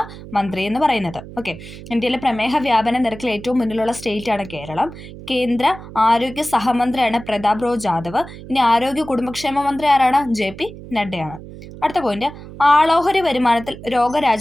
മന്ത്രി എന്ന് പറയുന്നത്. ഓക്കെ, ഇന്ത്യയിലെ പ്രമേഹ വ്യാപന നിരക്കിൽ ഏറ്റവും മുന്നിലുള്ള സ്റ്റേറ്റ് ആണ് കേരളം. കേന്ദ്ര ആരോഗ്യ സഹമന്ത്രിയാണ് പ്രതാപ് റോ ജാദവ്. ഇനി ആരോഗ്യ കുടുംബക്ഷേമ മന്ത്രി ആരാണ്? JP നഡ്ഡയാണ്. അടുത്ത പോയിന്റ്, ആളോഹരി വരുമാനത്തിൽ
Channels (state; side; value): noise; right; hum, 15 dB below the sound